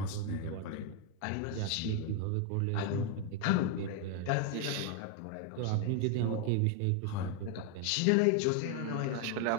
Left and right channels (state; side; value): different; both; correlation 0.01